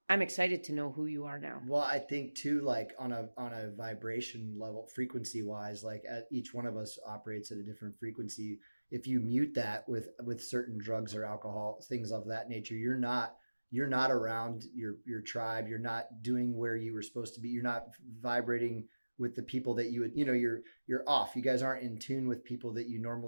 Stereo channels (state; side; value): inverted; both; correlation -1.00